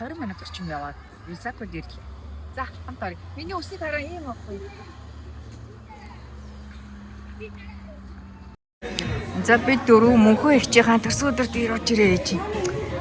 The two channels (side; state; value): both; identical; correlation 1.00